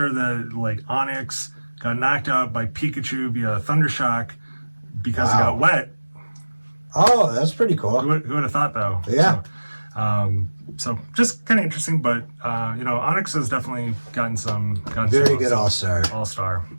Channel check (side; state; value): both; inverted; correlation -1.00